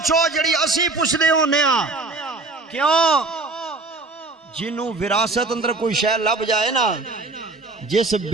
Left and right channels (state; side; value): quieter; left; 3.4 dB